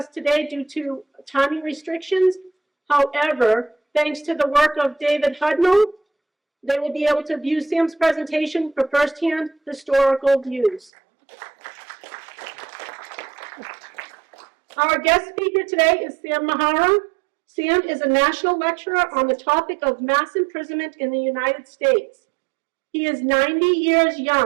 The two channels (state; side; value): drops out; left; at 10.9 s